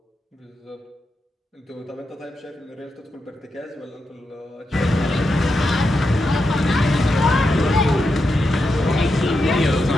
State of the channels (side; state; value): both; normal; correlation 0.86